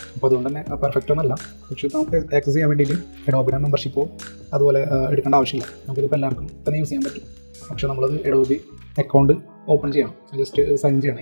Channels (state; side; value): inverted; both; correlation -1.00